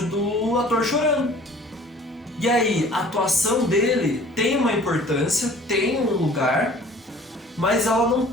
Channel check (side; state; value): both; normal; correlation 0.49